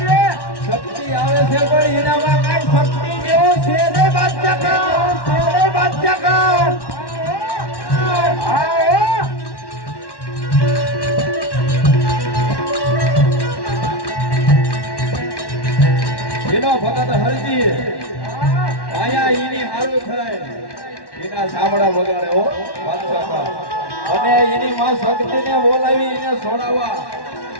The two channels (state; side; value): late; right; 1.1 ms